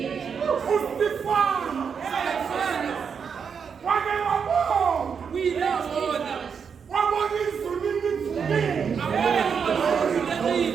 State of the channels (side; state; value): left; quieter; 6.5 dB